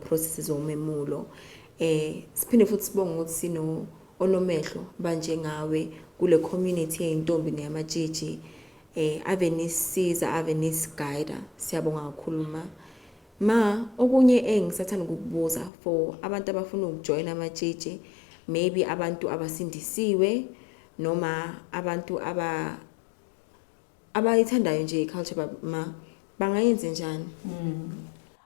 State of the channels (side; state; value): right; drops out; at 15.7 s